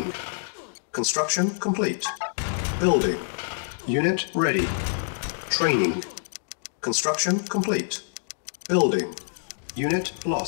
Construction complete. Building. Unit ready. Training. Construction complete. Building. Unit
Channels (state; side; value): silent; right; digital silence